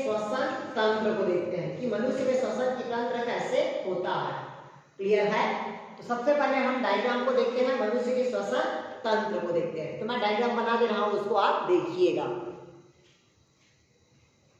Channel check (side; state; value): both; identical; correlation 1.00